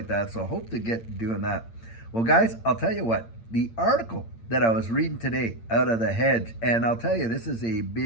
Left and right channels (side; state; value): right; late; 8.8 ms